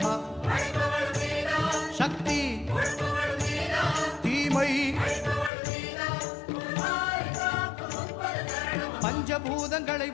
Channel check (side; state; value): right; drops out; at 5.5 s